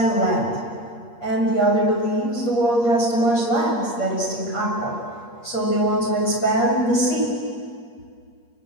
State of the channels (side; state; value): right; late; 8.5 ms